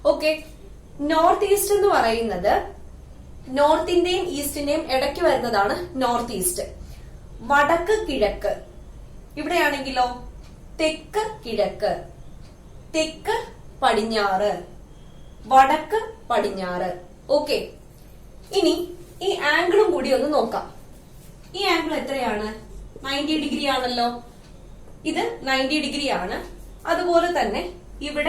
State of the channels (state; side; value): identical; both; correlation 1.00